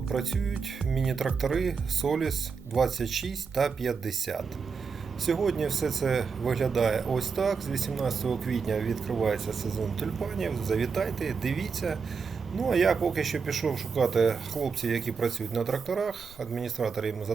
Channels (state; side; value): quieter; left; 5.5 dB